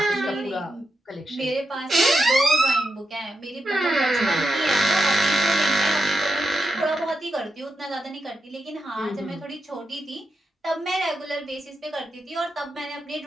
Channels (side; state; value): both; normal; correlation 0.85